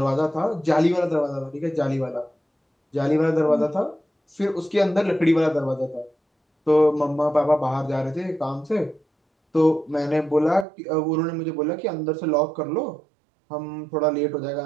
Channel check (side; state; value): left; drops out; at 10.7 s